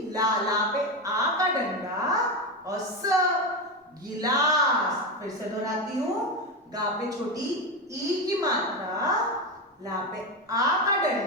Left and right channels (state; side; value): normal; both; correlation 0.15